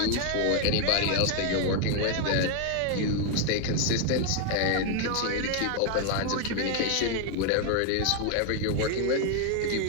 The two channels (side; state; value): both; different; correlation 0.00